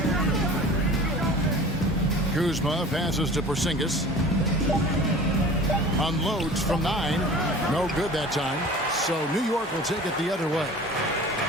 Kuzma passes to Porzingis. Unloads from 9. No good that time. So New York will take it the other way.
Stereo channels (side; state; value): both; normal; correlation 0.42